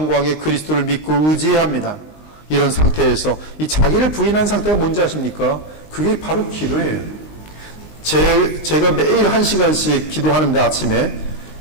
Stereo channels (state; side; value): late; right; 19 ms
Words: 그리스도를 믿고 의지해야 합니다. 이런 상태에서 이 자기를 부인한 상태가 뭔지 아십니까? 그게 바로 기도예요. 제가 매일 1시간씩 기도하는데 아침에